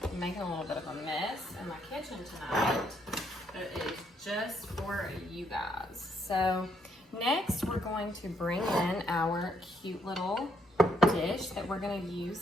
making a little bit of a mess in my kitchen tonight, but it is just for you guys. So next we're going to bring in our cute little dish that we're going to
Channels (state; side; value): normal; both; correlation 0.71